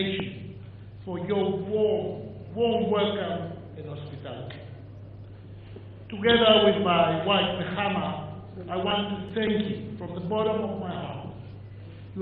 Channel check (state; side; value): identical; both; correlation 1.00